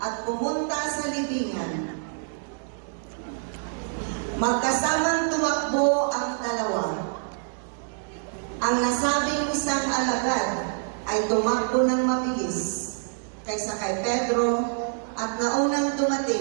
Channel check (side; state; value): left; silent; digital silence